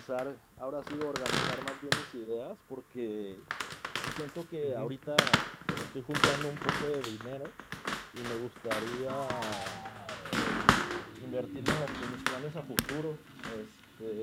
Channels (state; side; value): identical; both; correlation 1.00